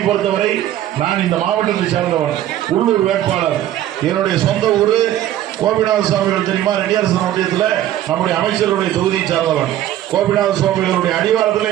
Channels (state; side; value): quieter; left; 12.7 dB